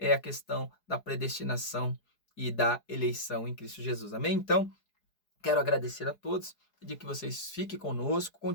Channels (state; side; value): late; right; 4.8 ms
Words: a questão da predestinação e da eleição em Cristo Jesus. Amém? Então, quero agradecer a todos, pedir que vocês fiquem conosco,